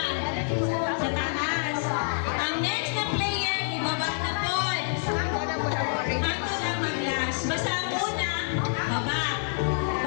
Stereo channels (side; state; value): right; silent; digital silence